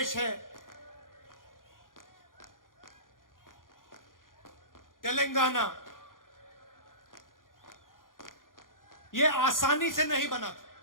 है, तेलंगाना, ये आसानी से नहीं बना था।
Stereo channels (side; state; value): right; late; 0.90 ms